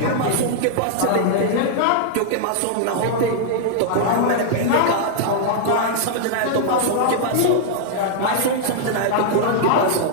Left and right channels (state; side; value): different; both; correlation -0.01